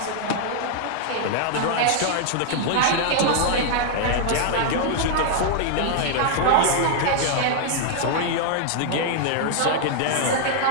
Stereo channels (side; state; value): both; different; correlation 0.00